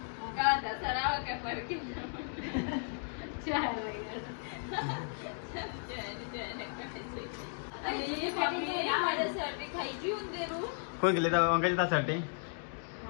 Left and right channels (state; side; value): silent; right; 54 dB below the other